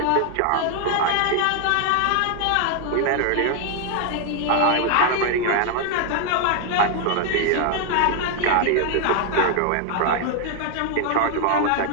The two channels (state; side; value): different; both; correlation 0.00